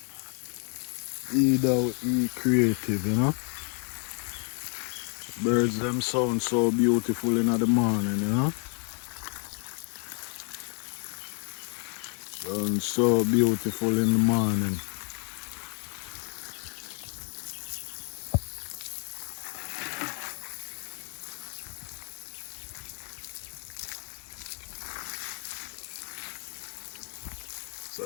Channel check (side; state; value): right; quieter; 39.6 dB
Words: Be creative, you know? Birds them sound so beautiful in the morning, you know? Sound so beautiful in the morning. So